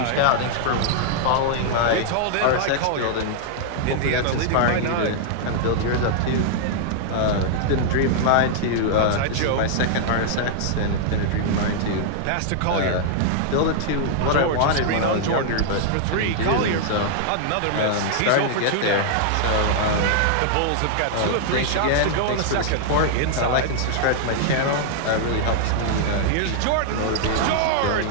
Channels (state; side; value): different; both; correlation -0.01